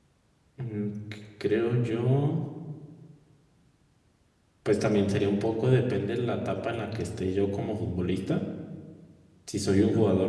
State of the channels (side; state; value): both; identical; correlation 1.00